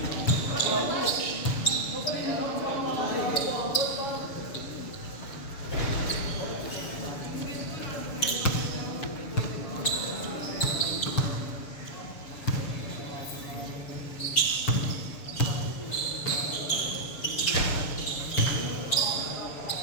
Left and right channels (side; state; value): right; late; 6.9 ms